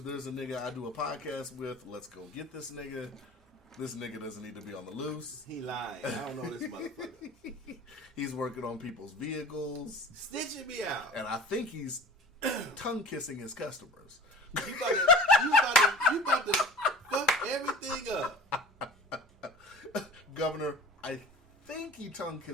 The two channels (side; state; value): both; normal; correlation 0.39